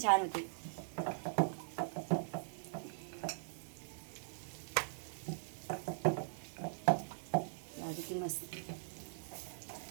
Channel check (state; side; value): silent; left; digital silence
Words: छान होते. किती मस्त.